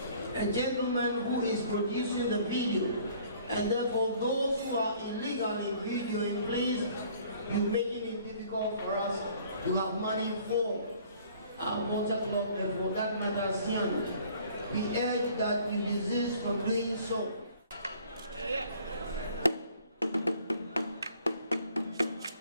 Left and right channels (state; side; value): inverted; both; correlation -0.55